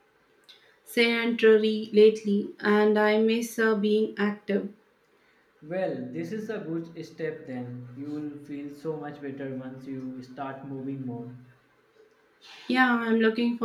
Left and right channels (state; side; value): identical; both; correlation 1.00